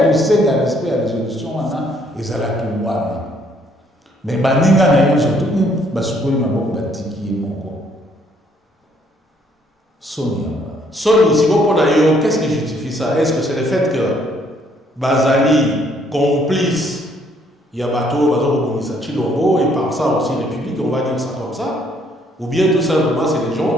un respect de la résolution Wana, ils allaient tout Wana. Mais baninga na yo surtout basukoli maboko batiki moko Sonia. Sony, si vous prenez, qu'est-ce qui justifie ça? Est-ce que c'est le fait que Bazali complice Yabato, Chilombo et par ça aussi République, on va dire ça comme ça? Ou bien tout simplement c'est des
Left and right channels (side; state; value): both; normal; correlation 0.66